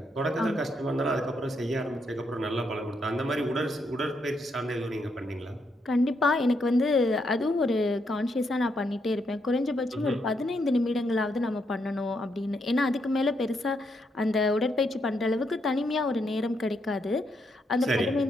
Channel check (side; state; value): both; normal; correlation 0.78